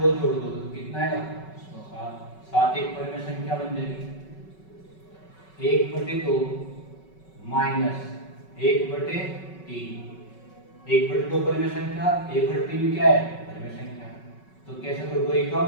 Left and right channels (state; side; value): late; right; 5.3 ms